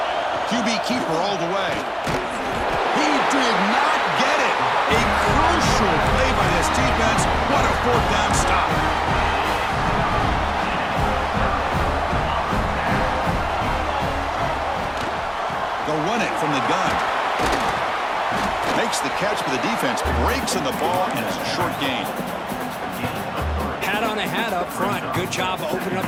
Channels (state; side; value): identical; both; correlation 1.00